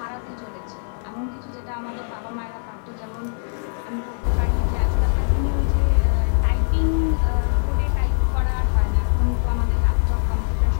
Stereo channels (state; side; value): silent; right; digital silence